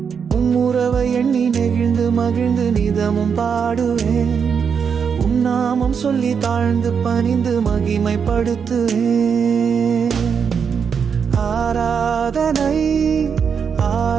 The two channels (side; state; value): left; quieter; 6.6 dB